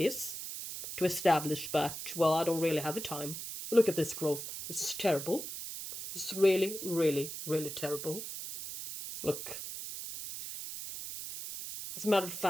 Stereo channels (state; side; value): noise; right; hiss, 8 dB below the sound